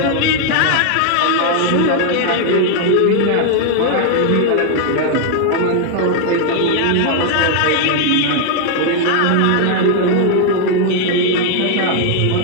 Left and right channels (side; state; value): both; different; correlation 0.00